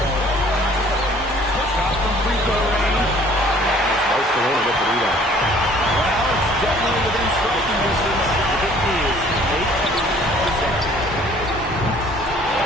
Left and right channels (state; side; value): normal; both; correlation 0.55